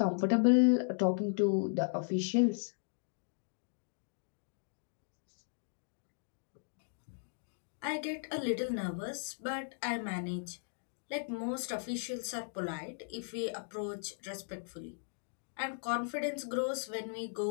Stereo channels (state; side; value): silent; right; digital silence